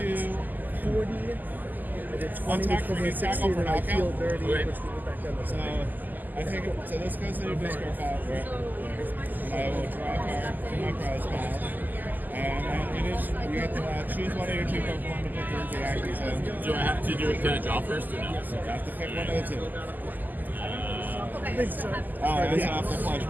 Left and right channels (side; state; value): left; late; 0.085 ms